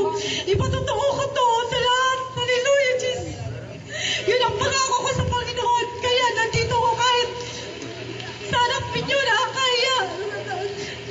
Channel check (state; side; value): identical; both; correlation 1.00